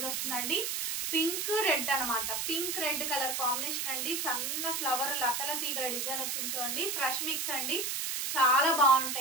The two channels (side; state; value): right; noise; hiss, 1 dB below the sound